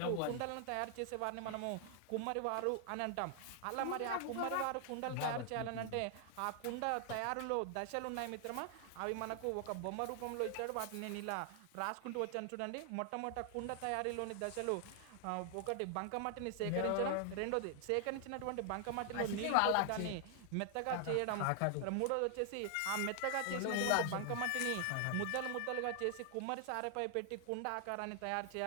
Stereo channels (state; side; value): different; both; correlation 0.00